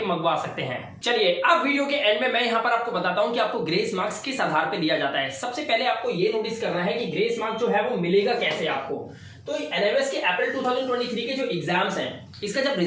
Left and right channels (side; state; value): both; identical; correlation 1.00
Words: मंगवा सकते हैं। चलिए अब वीडियो के एंड में मैं यहाँ पर आपको बताता हूँ कि आपको ग्रेस मार्क्स किस आधार पे दिया जाता है। सबसे पहले आपको ये नोटिस करना है कि ग्रेस मार्क्स जो है वो मिलेगा कैसे आपको। तो एनएमएस के अप्रैल 2023 के जो एग्जाम्स हैं इसका जब